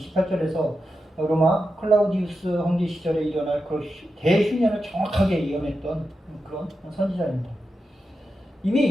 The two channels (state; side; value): normal; both; correlation 0.89